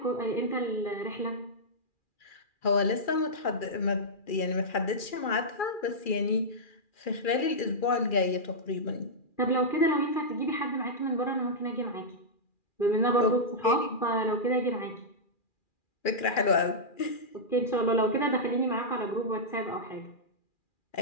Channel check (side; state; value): right; late; 2.4 ms